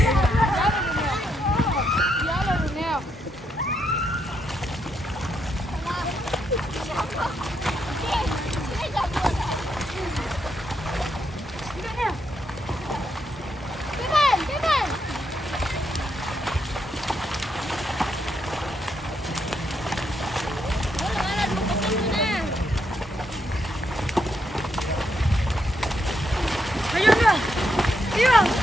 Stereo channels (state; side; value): normal; both; correlation 0.79